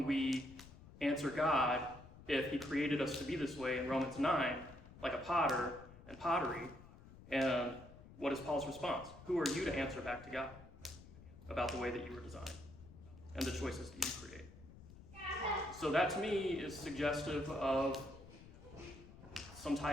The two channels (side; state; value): left; noise; rumble, 18 dB below the sound